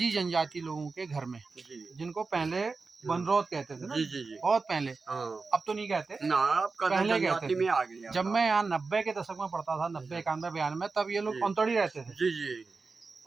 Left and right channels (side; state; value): left; quieter; 4.2 dB